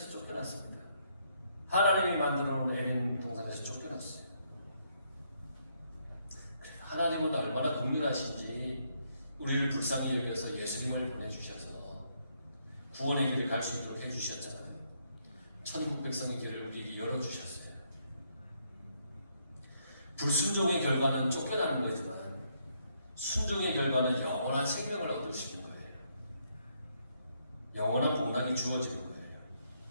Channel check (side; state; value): both; inverted; correlation -0.74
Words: 쫓겨났습니다. 하나님이 만들어 놓은 에덴 동산에서 쫓겨났어요. 하나님은 얼마나 긍휼하신지 우리를 불쌍히 여겨서 예수님을 보내주셔서 구원의 길을 갈 수 있도록 해주셨잖아요. 천국 백성의 길을 우리에게 열어주셨어요. 불순종의 결과는 쫓겨나는 거지만 순종의 결과는 영원한 생명을 얻을 수 있는 거예요. 영원한 복락이 주어지는 거예요.